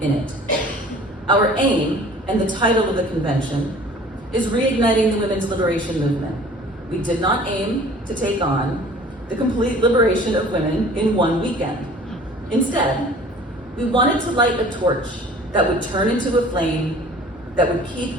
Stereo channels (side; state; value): both; normal; correlation 0.48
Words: in it. Our aim, and the title of the convention, is reigniting the women's liberation movement. We did not aim to take on the complete liberation of women in one weekend. Instead, we wanted to light a torch that would turn into a flame that would